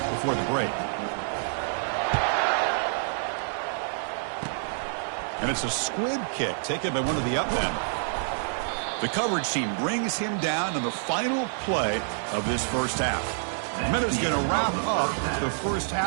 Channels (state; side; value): silent; left; digital silence